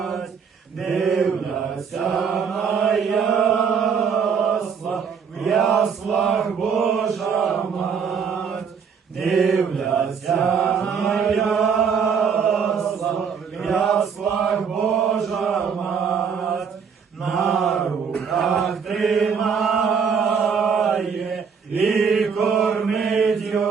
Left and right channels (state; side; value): quieter; left; 6.4 dB